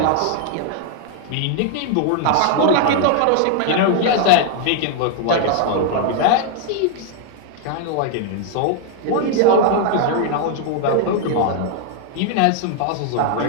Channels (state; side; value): different; both; correlation 0.00